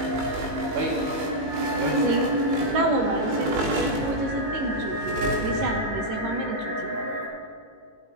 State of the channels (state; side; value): late; left; 18 ms